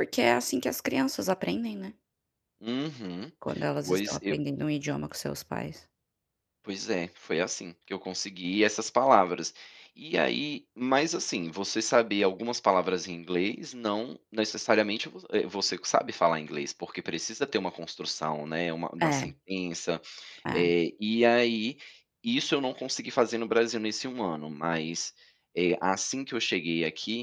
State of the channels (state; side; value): identical; both; correlation 1.00